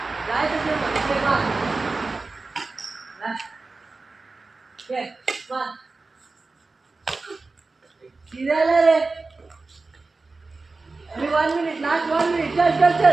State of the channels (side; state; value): left; quieter; 3.7 dB